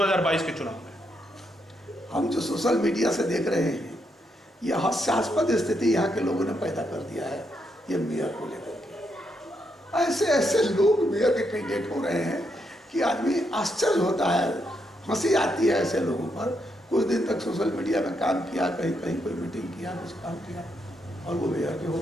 के चुनाव में? हम जो सोशल मीडिया से देख रहे हैं, यह हास्यास्पद स्थिति यहाँ के लोगों ने पैदा कर दिया है ये मेयर को लेकर के। ऐसे ऐसे लोग मेयर के कैंडिडेट हो रहे हैं कि आदमी आश्चर्य होता है, हंसी आती है ऐसे लोगों पर। कुछ दिन तक सोशल मीडिया में काम किया, कहीं कहीं कोई मीटिंग किया, कुछ काम किया, और वो मेयर के हो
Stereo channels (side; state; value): both; normal; correlation 0.79